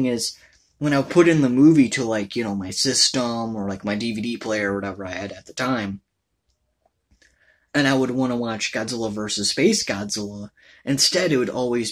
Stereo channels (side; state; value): both; identical; correlation 1.00